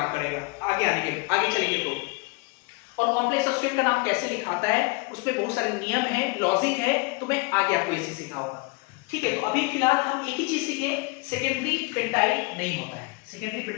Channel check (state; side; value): quieter; right; 27.3 dB